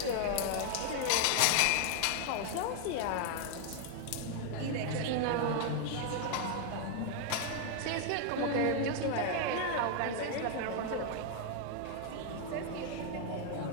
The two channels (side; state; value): both; different; correlation 0.00